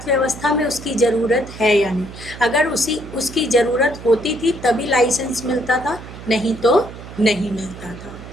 में उसकी ज़रूरत है या नहीं। अगर उसकी ज़रूरत होती थी तभी लाइसेंस मिलता था, नहीं तो नहीं मिलता था।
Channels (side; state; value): right; noise; hum, 14 dB below the sound